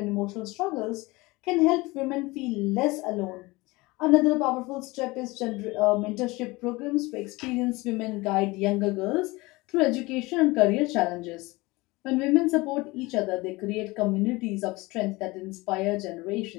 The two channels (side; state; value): right; quieter; 22.4 dB